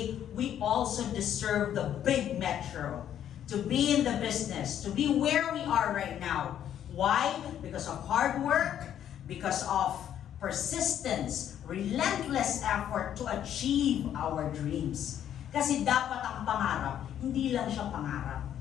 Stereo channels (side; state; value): right; quieter; 10.2 dB